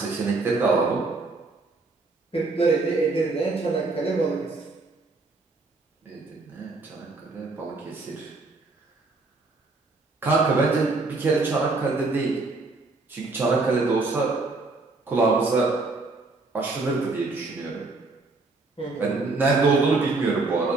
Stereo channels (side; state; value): left; quieter; 3.6 dB